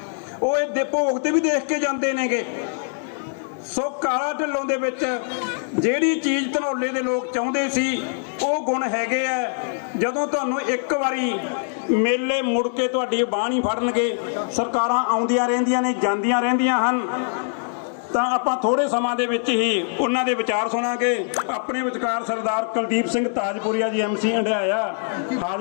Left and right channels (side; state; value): right; silent; digital silence